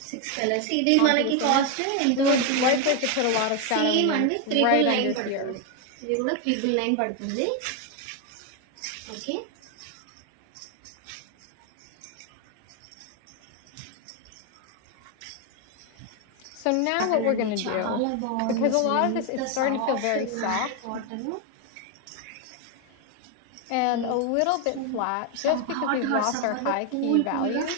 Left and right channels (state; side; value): different; both; correlation 0.01